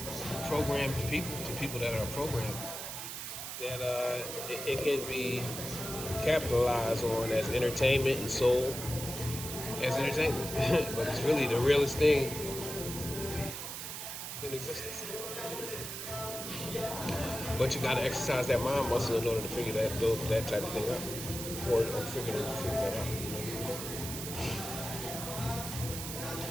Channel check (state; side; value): noise; right; hiss, 7 dB below the sound